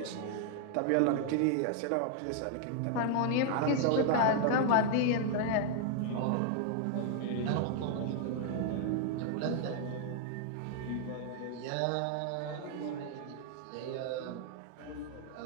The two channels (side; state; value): both; different; correlation 0.00